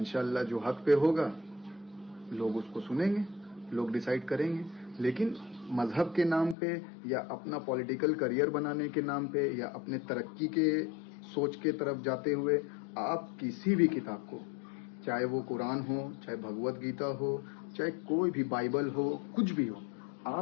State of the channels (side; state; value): right; drops out; at 6.6 s